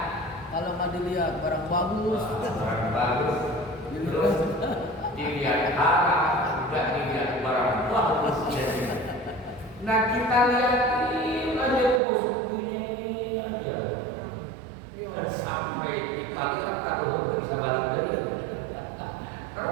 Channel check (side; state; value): left; drops out; at 12.0 s